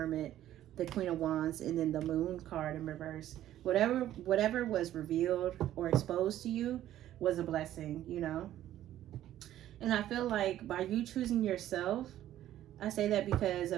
the Queen of Wands, and then the Moon card in reverse. Whatever was revealed or exposed to you was a blessing, you know. And I feel like by you choosing yourself, I say that because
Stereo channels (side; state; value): left; quieter; 12.7 dB